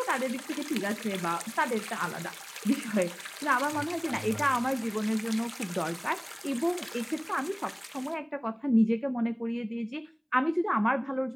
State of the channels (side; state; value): both; identical; correlation 1.00